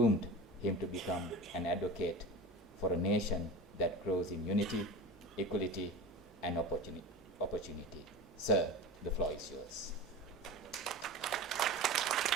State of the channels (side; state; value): both; normal; correlation 0.31